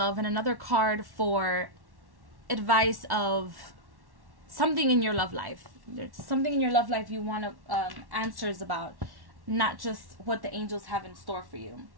and another card for advice of something in your love life. There's something in your love life you want answers about, not just what the angels have in store for you.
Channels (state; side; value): late; left; 1.1 ms